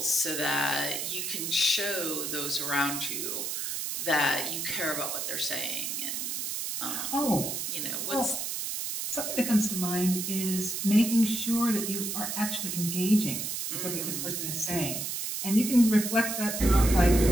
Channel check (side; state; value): right; noise; hiss, 3 dB below the sound